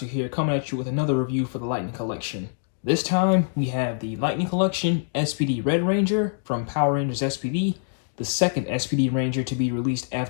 here, coming at you with another review for the Lightning Collection. This time, we have the Lightning Collection SPD Red Ranger from Power Rangers SPD, the second SPD Ranger to be released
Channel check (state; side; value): silent; right; digital silence